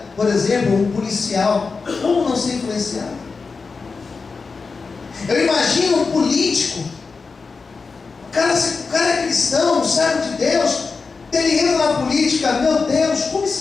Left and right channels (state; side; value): quieter; right; 4.6 dB